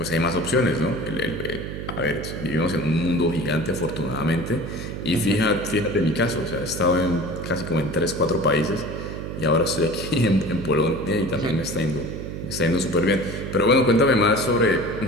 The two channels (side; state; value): right; noise; hum, 7 dB below the sound